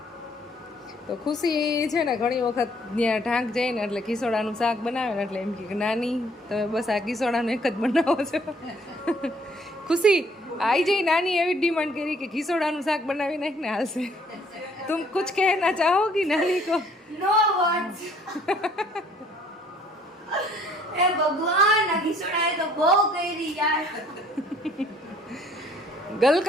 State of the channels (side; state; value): both; normal; correlation 0.61